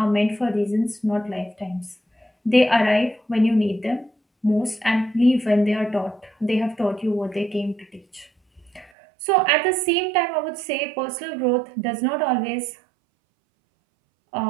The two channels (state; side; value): drops out; left; at 8.9 s